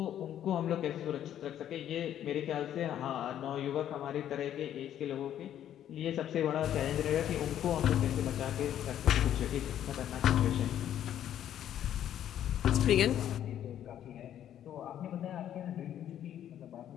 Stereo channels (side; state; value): right; quieter; 10.8 dB